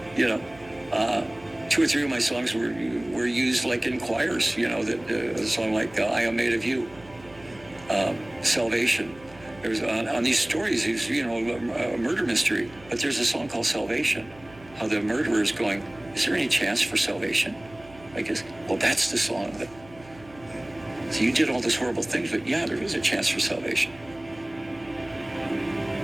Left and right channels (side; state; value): right; noise; hum, 23 dB below the sound